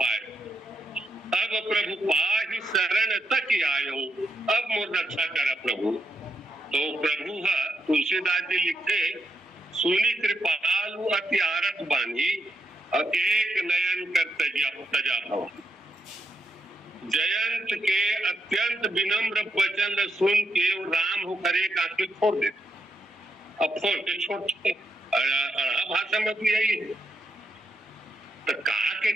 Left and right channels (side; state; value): both; normal; correlation 0.81